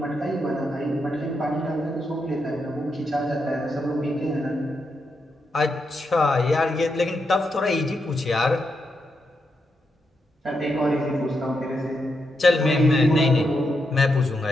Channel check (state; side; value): normal; both; correlation 0.83